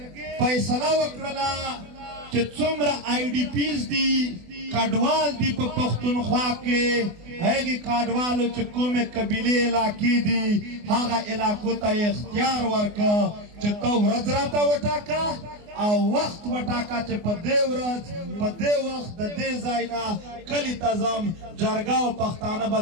فیصله وکړله چې څومره آی ډي پیز دي کډوال دي په پښتونخوا کې هغې کډوالو چې کومې قبیلې علاقې دي هغه علاقو ته یې اختیار ورکړه چې ته ورځ راته وټاکه او وخت وټاکه چې په دې ورځ په دې وخت د دې ځای نه کلي ته ځم جرګه او پښتانه به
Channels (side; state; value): left; late; 24 ms